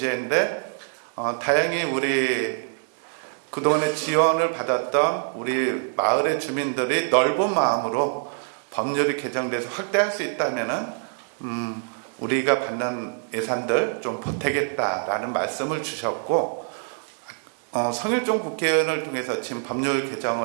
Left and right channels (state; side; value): silent; left; digital silence